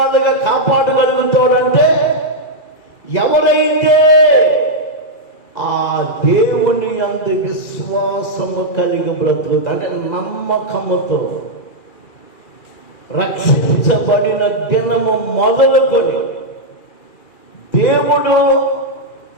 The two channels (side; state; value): right; late; 2.4 ms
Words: కాపాడగలుగుతాడంటే ఎవరైతే ఆ దేవుని అందు విశ్వాసము కలిగి బ్రతుకుతా, అంటే నమ్మకముతో రక్షించబడిన దినము మొదలుకొని దేవుడు